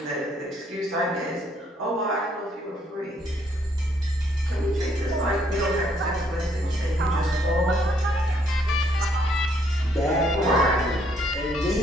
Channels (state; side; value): normal; both; correlation 0.68